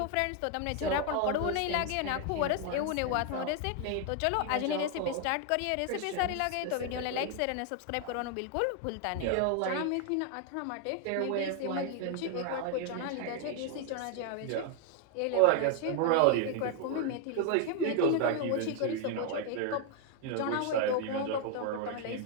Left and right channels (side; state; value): both; different; correlation 0.00